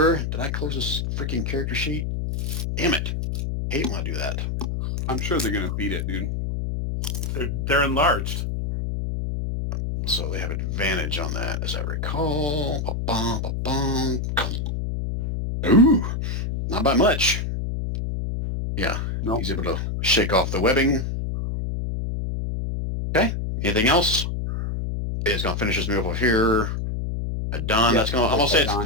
Did I close this freaking character sheet? Damn it. Hate when I do that. I'm sure they're going to beat it, dude. They're enlarged. So they have advantage on that, as I recall. Ba-bum, ba-bum. Ooh, not by much. Yeah, Nope. He's able to shake off the webbing. Okay, anything else? It's going to finish his move over here. Don, Yeah, that's going to, I'm going to say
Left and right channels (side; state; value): left; noise; hum, 2 dB below the sound